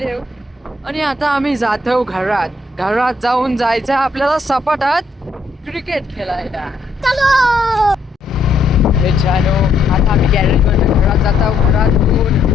आणि आता आम्ही जातो घरात. घरात जाऊन जायचं आपल्याला सपाटात क्रिकेट खेळायला. मित्रांनो, आता आम्ही गॅरेजवरून घरात जात आहोत.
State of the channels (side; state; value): right; quieter; 3.4 dB